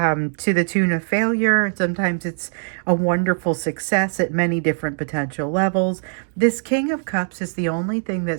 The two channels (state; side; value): silent; left; digital silence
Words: the tune of failure. Sometimes it's a wonderful success at many different potential levels. This King of Cups is the only thing that